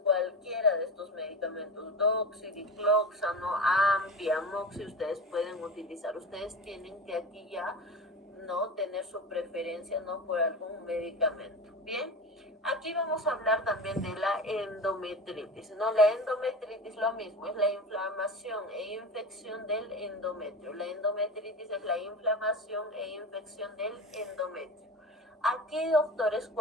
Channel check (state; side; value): normal; both; correlation 0.29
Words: de estos medicamentos, Doxy, Dicloxano, Ampi, Amoxi, ustedes pueden utilizar. Ustedes tienen que aquí ya no tener su preferencia no por algún medicamento. Bien, aquí vamos a hablar también de la endometritis, ¿no? La endometritis lo mismo, es la inflamación e infección del endometrio. La endometritis es la inflamación e infección del endometrio. Aquí, doctores,